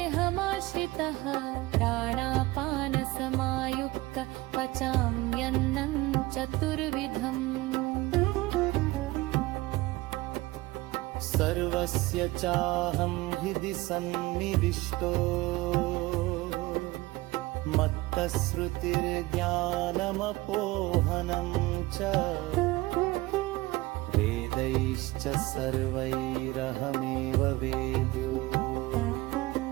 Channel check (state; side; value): quieter; left; 20.2 dB